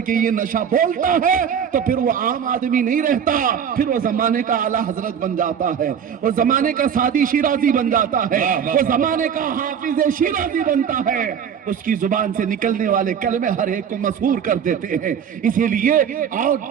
کے یہ نشہ بولتا ہے تو پھر وہ عام آدمی نہیں رہتا، پھر وہ زمانے کا اعلیٰ حضرت بن جاتا ہے، وہ زمانے کا سادی شیرازی بن جاتا ہے، وہ زمانے کا حافظ شیرازی بنتا ہے، اس کی زبان سے نکلنے والے کلمے ہر ایک کو مسحور کر دیتے ہیں۔ اسی لیے آؤ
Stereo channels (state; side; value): quieter; left; 7.9 dB